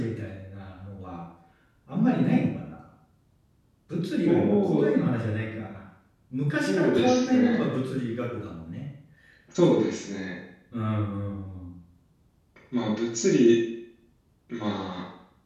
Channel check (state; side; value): identical; both; correlation 1.00